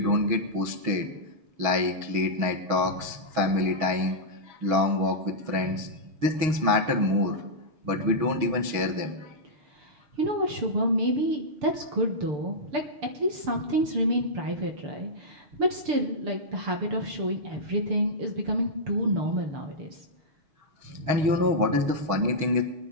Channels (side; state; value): left; late; 6.3 ms